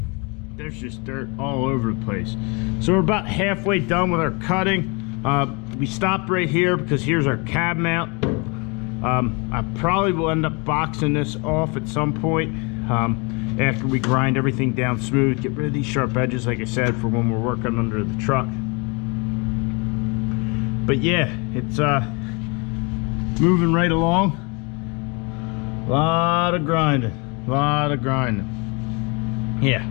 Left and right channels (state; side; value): quieter; right; 30.9 dB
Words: There's just dirt all over the place. So we're about halfway done with our cutting. We stopped right here because here's our cab mount. I probably will end up boxing this off at some point after we grind everything down smooth, get rid of these sharp edges, like I said, for when we're working under the truck. But yeah, it's moving right along. A lot of grinding, yeah.